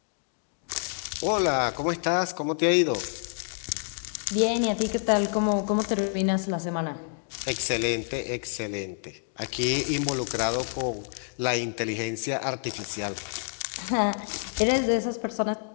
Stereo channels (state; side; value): silent; right; digital silence